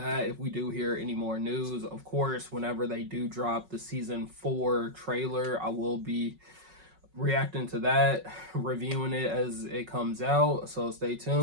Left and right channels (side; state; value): left; late; 5.4 ms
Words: if we do hear any more news. Of course, whenever they do drop the season 4 trailer, I will be reacting to that, reviewing it as it comes out. So stay